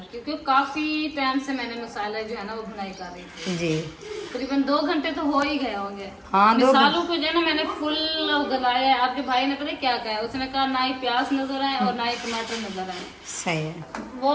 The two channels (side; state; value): both; identical; correlation 1.00